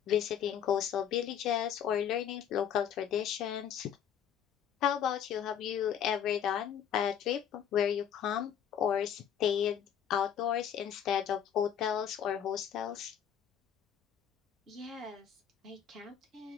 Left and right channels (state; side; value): quieter; right; 9.0 dB